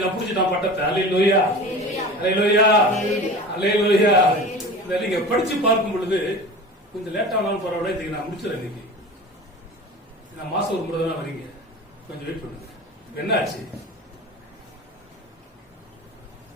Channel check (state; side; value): normal; both; correlation 0.35